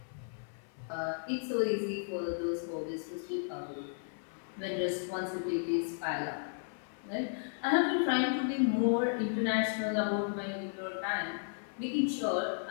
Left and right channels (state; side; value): silent; right; 55 dB below the other